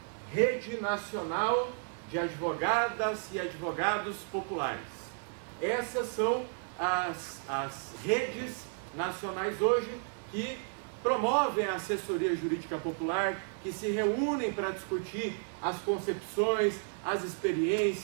Rede Nacional de Advogadas e Advogados Populares. Essas são as redes nacionais hoje que promovem a assessoria jurídica popular, que se reúnem para discutir as concepções, as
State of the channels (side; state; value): left; silent; 56 dB below the other